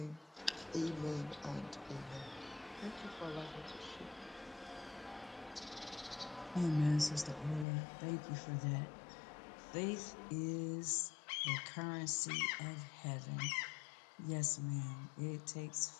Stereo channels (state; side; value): drops out; right; at 7.7 s